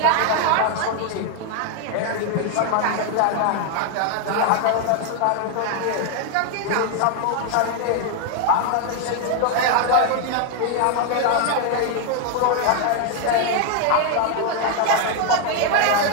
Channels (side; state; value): both; different; correlation 0.00